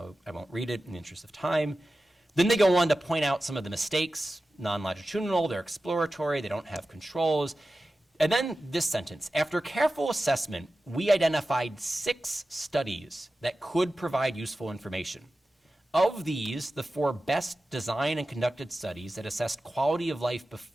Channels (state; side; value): normal; both; correlation 0.94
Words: I won't read it in the interest of time. Then they go on to point out some of the mistakes, non-longitudinal, they're exploratory, they don't have controls. And then this sentence, after careful assessment, we identified 6 studies that could provide useful information. Of these, the 4 best designed and conducted studies that assessed quality of life